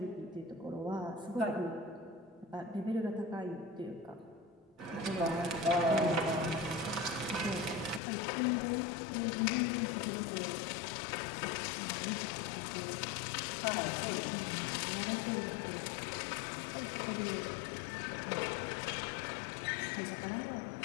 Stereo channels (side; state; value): right; drops out; at 8.0 s